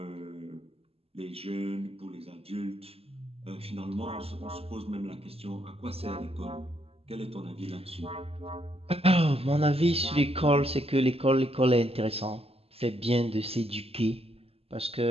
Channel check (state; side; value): late; left; 0.28 ms